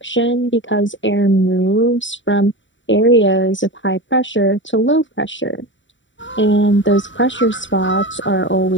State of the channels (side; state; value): right; late; 0.55 ms